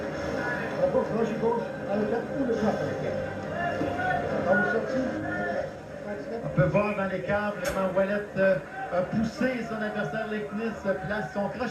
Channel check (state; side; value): identical; both; correlation 1.00